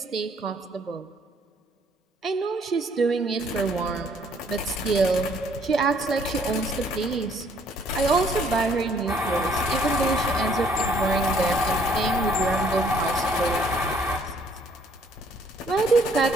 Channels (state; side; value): normal; both; correlation 0.63